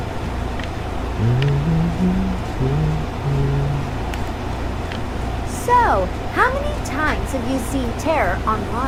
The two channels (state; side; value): identical; both; correlation 1.00